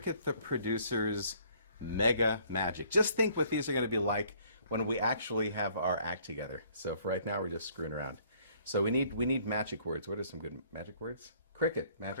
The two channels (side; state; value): both; inverted; correlation -0.60